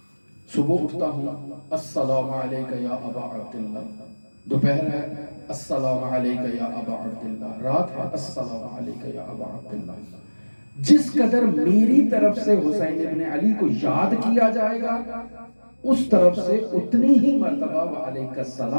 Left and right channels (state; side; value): inverted; both; correlation -1.00